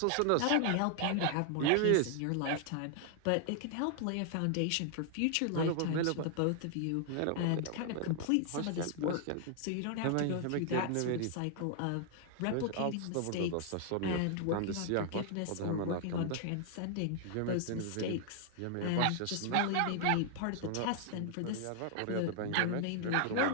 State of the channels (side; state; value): both; different; correlation 0.00